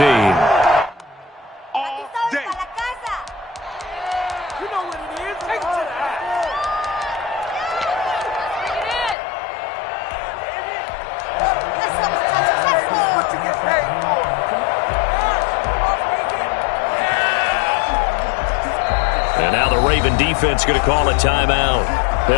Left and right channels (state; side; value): drops out; right; at 9.2 s